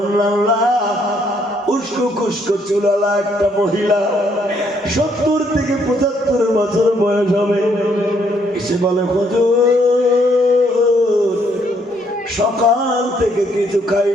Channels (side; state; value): both; normal; correlation 0.70